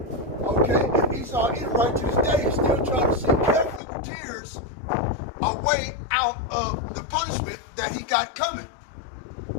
Okay, and ESAU-EDOM right to this day is still trying to seek carefully with tears a way out of the punishment that he got coming.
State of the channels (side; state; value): right; drops out; at 3.8 s